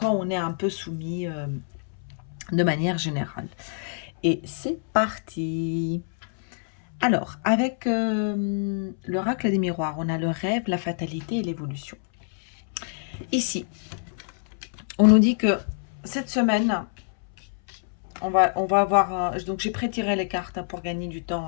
on est un peu soumis de manière générale. Et c'est parti. Alors, avec l'oracle des miroirs, on a le rêve, la fatalité et l'évolution. Ici, on nous dit que cette semaine, on va avoir... donc j'ai pré-tiré les cartes pour gagner du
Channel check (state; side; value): silent; right; 61 dB below the other